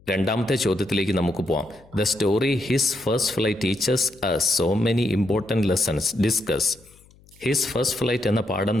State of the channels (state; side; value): noise; left; hum, 28 dB below the sound